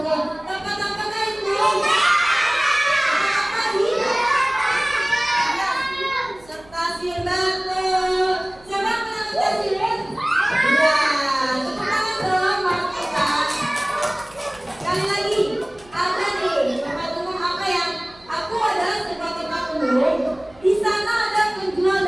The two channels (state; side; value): noise; right; hum, 26 dB below the sound